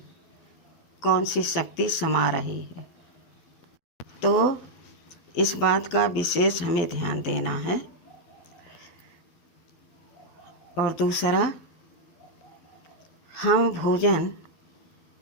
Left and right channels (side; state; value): right; late; 12 ms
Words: कौन सी शक्ति समा रही है। तो इस बात का विशेष हमें ध्यान देना है। और दूसरा, हम भोजन